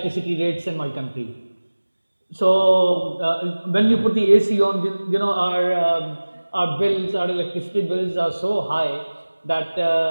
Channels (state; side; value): inverted; both; correlation -1.00